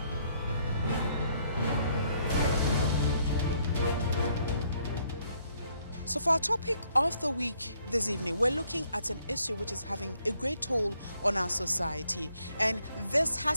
So for our topic of the week this evening, we're looking at an issue which is having a great toll on our society. And this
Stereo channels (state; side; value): inverted; both; correlation -0.69